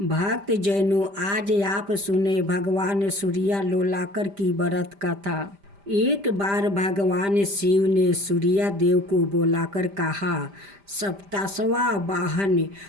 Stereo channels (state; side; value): late; left; 5.0 ms